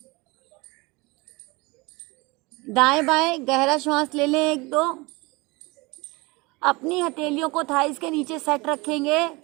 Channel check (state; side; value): quieter; left; 24.8 dB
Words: दाएं बाएं गहरा श्वास ले लें, एक दो। अपनी हथेलियों को थाइस के नीचे सेट रखेंगे।